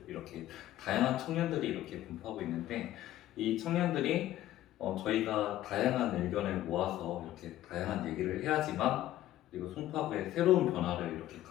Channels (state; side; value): quieter; right; 13.9 dB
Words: 이렇게 다양한 청년들이 이렇게 분포하고 있는데 이 청년들이 저희가 다양한 의견을 모아서 이렇게 다양한 얘기를 해야지만 그리고 송파구의 새로운 변화를 이렇게